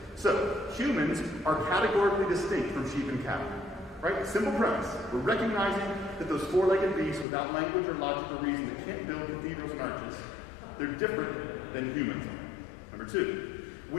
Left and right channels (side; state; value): right; drops out; at 7.2 s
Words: So humans are categorically distinct from sheep and cattle. Right? Simple premise. We're recognizing that those four-legged beasts without language or logic or reason that can't build cathedrals and arches, they're different than humans are. Number two,